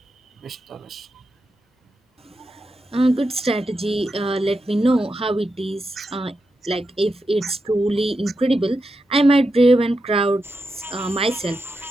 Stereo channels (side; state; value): both; normal; correlation 0.87